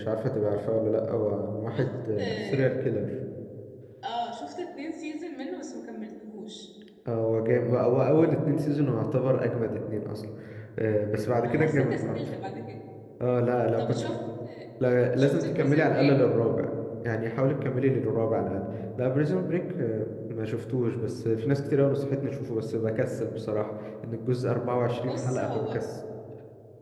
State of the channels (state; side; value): identical; both; correlation 1.00